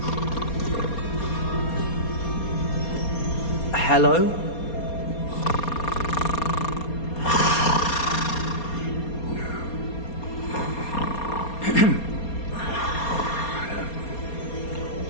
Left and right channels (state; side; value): late; right; 4.3 ms